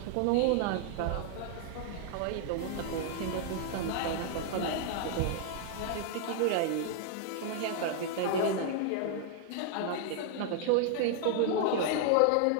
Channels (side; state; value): both; different; correlation 0.00